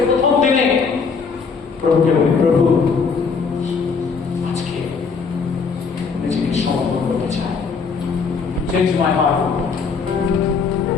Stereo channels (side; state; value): right; quieter; 5.3 dB